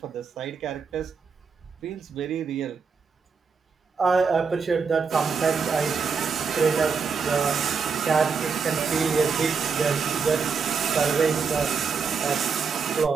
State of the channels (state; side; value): quieter; left; 5.6 dB